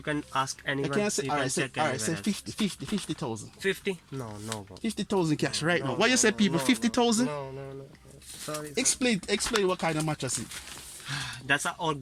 can ask anyone. I can't say, you alright, can say check 50,000. 50? No, bro. 50,000 cash right No, now. What you say, people? 50,000? No. Sorry. Explain what kind of mattress it. That's an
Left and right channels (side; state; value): both; identical; correlation 1.00